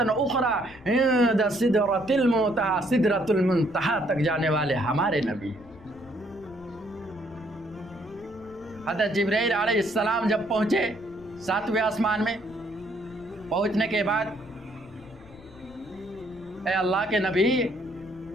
اخرى عند سدرة المنتہى، سدرۃ المنتہى تک جانے والے ہمارے نبی۔ حضرت جبرائیل علیہ السلام جب پہنچے 7ویں آسمان میں، پہنچنے کے بعد اے اللہ کے نبی،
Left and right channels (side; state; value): left; noise; rumble, 22 dB below the sound